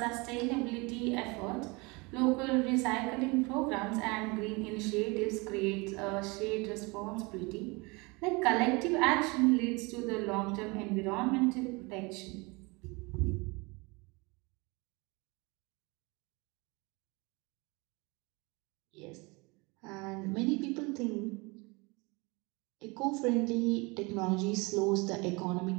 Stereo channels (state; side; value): quieter; left; 26.9 dB